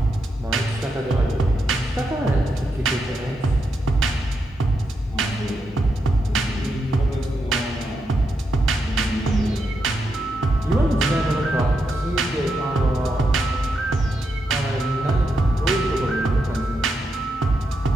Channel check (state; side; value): normal; both; correlation 0.83